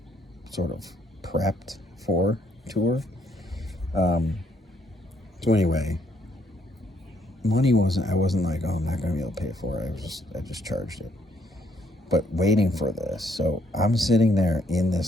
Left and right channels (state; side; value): normal; both; correlation 0.69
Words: sort of prepped for tour. So anyway, I wasn't like, oh, I'm not going to be able to pay for it. I just charged it. But waiting for this. So I'm sitting there in